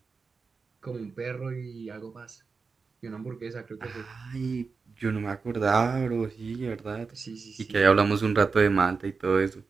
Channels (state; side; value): quieter; left; 4.8 dB